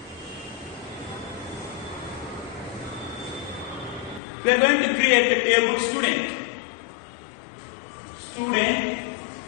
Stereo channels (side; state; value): right; drops out; at 4.2 s